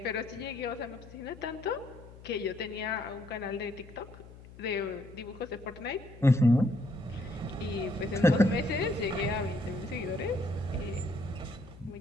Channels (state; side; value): noise; left; hum, 18 dB below the sound